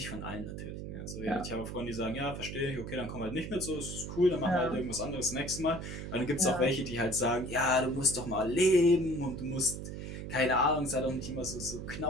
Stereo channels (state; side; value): noise; right; hum, 7 dB below the sound